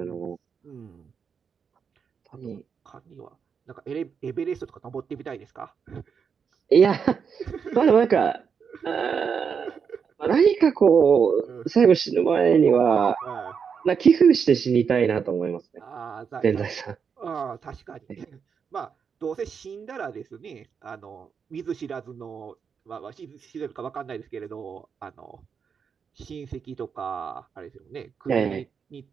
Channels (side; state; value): left; quieter; 6.5 dB